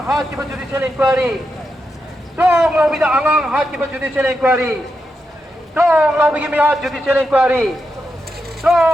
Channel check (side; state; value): both; normal; correlation 0.86